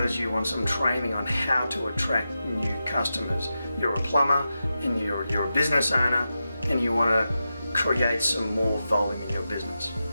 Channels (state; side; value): inverted; both; correlation -0.90